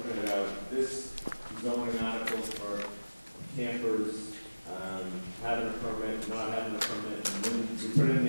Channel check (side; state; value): both; inverted; correlation -1.00